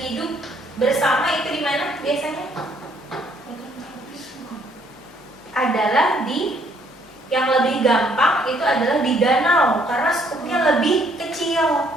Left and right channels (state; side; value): normal; both; correlation 0.66